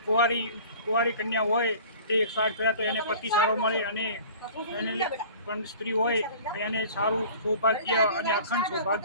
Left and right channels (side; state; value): both; inverted; correlation -0.44